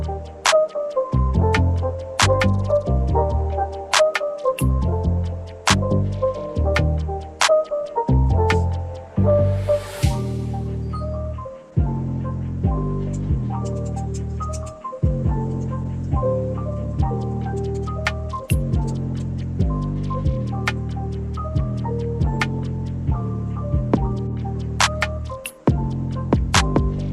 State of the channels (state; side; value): identical; both; correlation 1.00